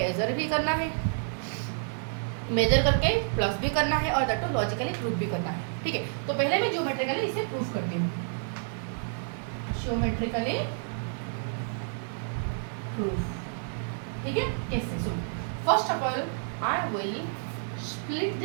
भी करना है, मेजर करके प्लस भी करना है और दैट लॉजिकली प्रूफ भी करना है, ठीक है। तो पहले मैं ज्योमेट्रिकली इसे प्रूफ करती हूँ, ज्योमेट्रिकली प्रूफ, ठीक है। कैसे? सुन, first of all I will split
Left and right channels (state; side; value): silent; left; digital silence